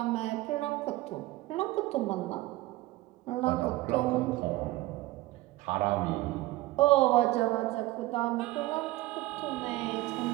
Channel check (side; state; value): left; quieter; 18.1 dB